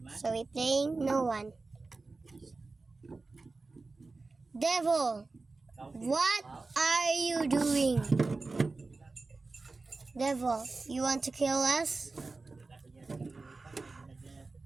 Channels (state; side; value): quieter; left; 3.7 dB